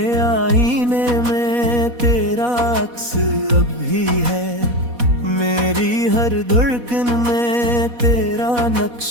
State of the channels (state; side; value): late; left; 4.1 ms